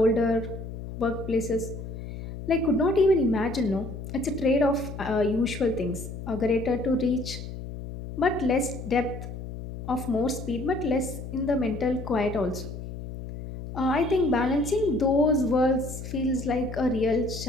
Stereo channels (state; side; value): noise; left; hum, 9 dB below the sound